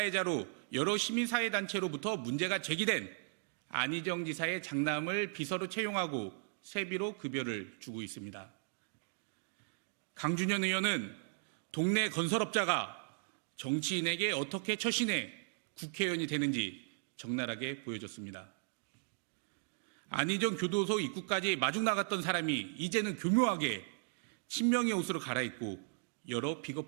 여러 시민사회단체로부터 문제가 제기된 안희정 지사의 장남을 비서로 채용하고 세비로 급여를 주고 있습니다. 강준현 의원은 동네 건설업자가 정치인에게 어떻게 처신해 국회의원이 되는지 적나라하게 보여줬습니다. 안희정 교도소 입구까지 마중 나갔던 사람이 이제는 교묘하게 친명의 옷으로 갈아입고 여러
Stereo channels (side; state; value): left; silent; digital silence